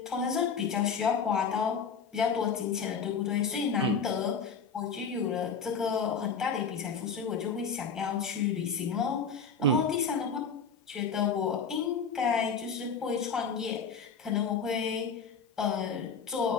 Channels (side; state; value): right; quieter; 5.5 dB